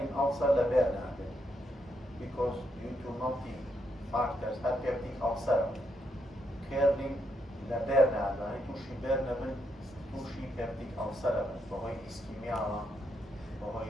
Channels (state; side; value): normal; both; correlation 0.79